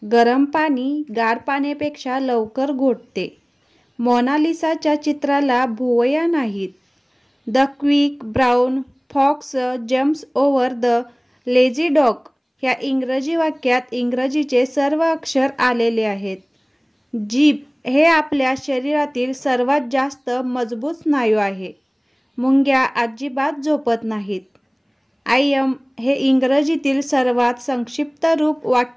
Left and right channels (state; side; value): identical; both; correlation 1.00